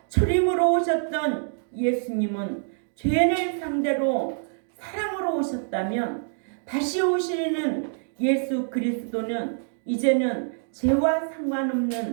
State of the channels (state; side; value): silent; left; digital silence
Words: 초림으로 오셨던 예수님은 죄인을 상대로 사랑으로 오셨다면 다시 오시는 예수 그리스도는 이제는 죄와